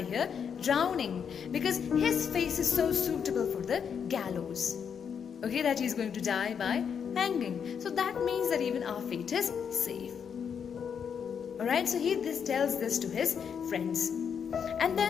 here drowning, because his face is so suitable for the gallows. Okay, that he is going to die by hanging. So that means that even our fate is safe. Alright, so he tells this to his friends. And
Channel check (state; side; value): quieter; right; 7.2 dB